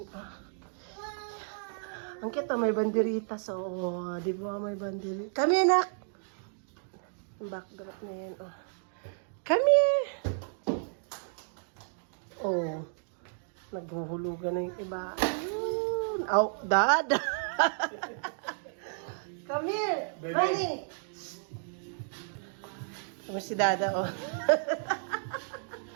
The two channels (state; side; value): silent; left; digital silence